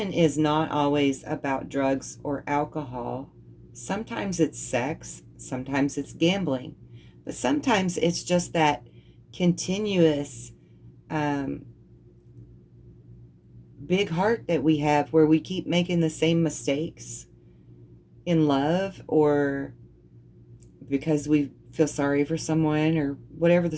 is not always about drugs or alcohol. Sometimes it's sex, sometimes it's gambling, but sometimes it's just that continuous big heart that we have, where we keep making the same mistakes in love, or because we feel sorry for someone, or whatever the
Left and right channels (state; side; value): identical; both; correlation 1.00